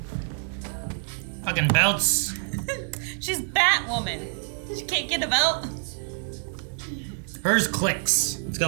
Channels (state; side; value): silent; left; digital silence